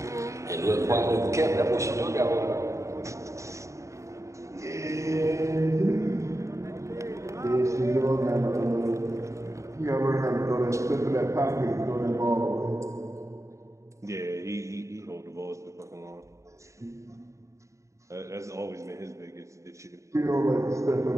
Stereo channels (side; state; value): left; late; 0.15 ms